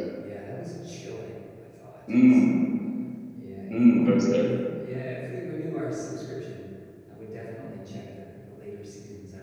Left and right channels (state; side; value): identical; both; correlation 1.00